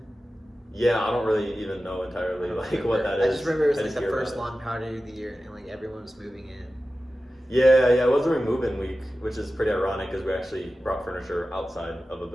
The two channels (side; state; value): both; normal; correlation 0.94